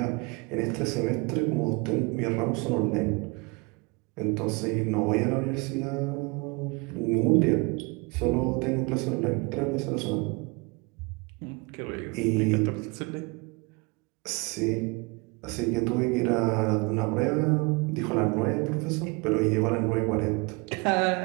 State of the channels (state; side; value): quieter; left; 28.1 dB